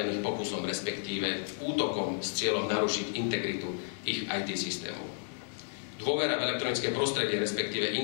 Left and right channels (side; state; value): right; silent; digital silence